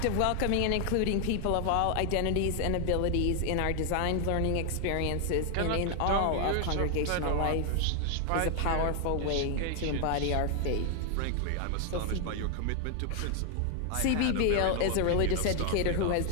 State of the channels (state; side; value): different; both; correlation 0.00